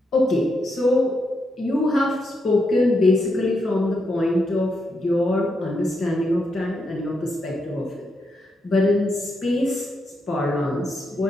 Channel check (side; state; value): both; normal; correlation 0.81